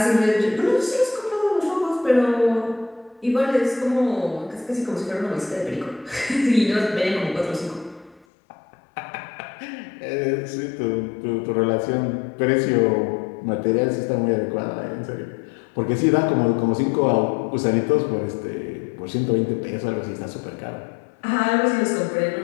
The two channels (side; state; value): right; drops out; at 8.2 s